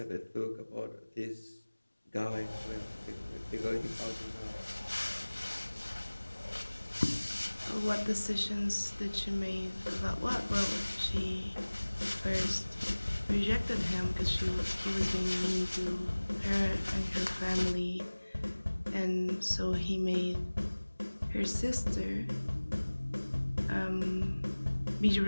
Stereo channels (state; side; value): inverted; both; correlation -1.00